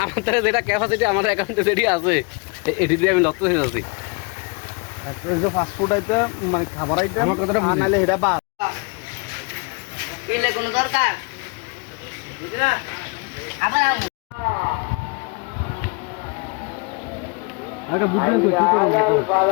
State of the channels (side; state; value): right; quieter; 31.1 dB